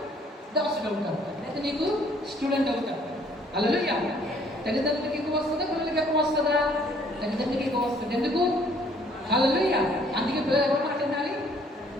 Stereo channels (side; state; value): both; normal; correlation 0.61